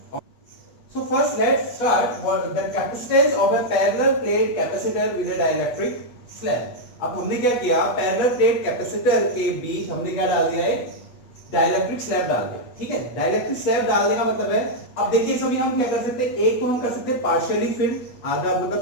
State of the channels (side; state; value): right; late; 8.2 ms